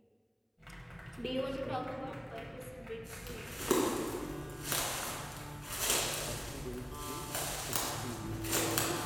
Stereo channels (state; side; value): identical; both; correlation 1.00